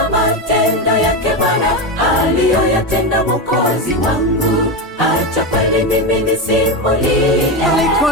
matendo yake Bwana aliyoyatenda Mwokozi wangu. Acha kweli mimi nisimulie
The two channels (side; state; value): both; normal; correlation 0.15